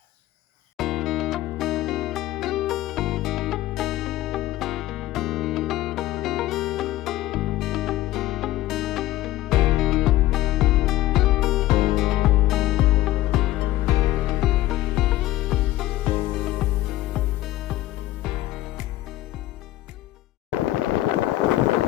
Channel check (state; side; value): quieter; right; 15.8 dB